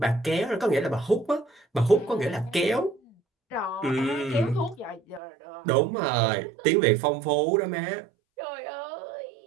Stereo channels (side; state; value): left; drops out; at 5.2 s